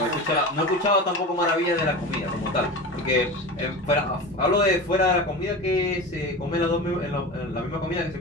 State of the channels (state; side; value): normal; both; correlation 0.29